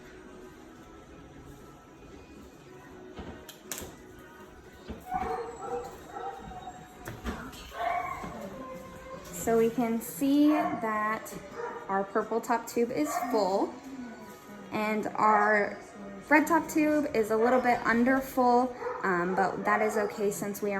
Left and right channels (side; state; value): both; identical; correlation 1.00